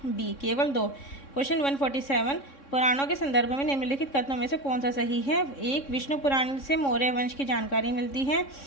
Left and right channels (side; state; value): right; late; 3.6 ms